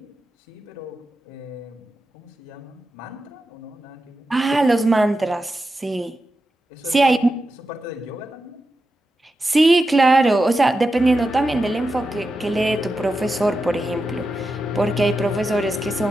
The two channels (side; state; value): both; normal; correlation 0.90